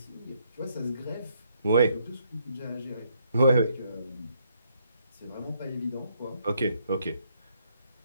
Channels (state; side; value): inverted; both; correlation -0.73